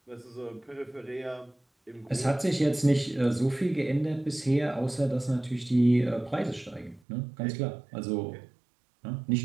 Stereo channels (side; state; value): left; drops out; at 7.0 s